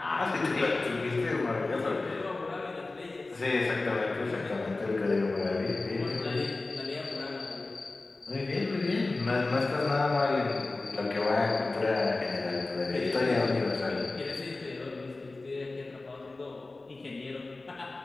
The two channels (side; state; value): right; quieter; 3.3 dB